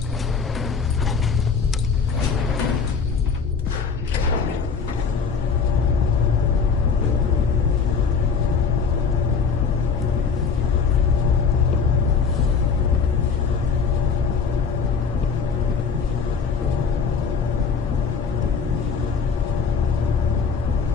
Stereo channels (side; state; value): right; quieter; 5.6 dB